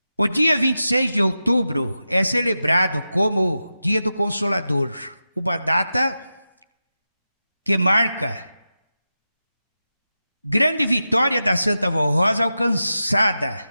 O dia 26 de outubro é celebrado como Dia do Consolador, uma data que marca grande vitória da Santa Vó Rosa alcançada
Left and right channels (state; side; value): inverted; both; correlation -0.92